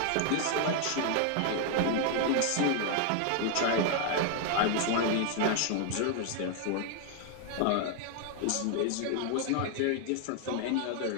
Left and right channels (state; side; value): different; both; correlation 0.00